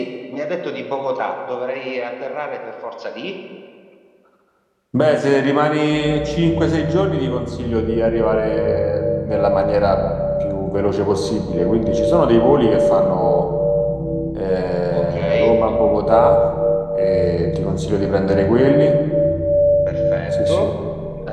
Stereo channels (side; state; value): both; identical; correlation 1.00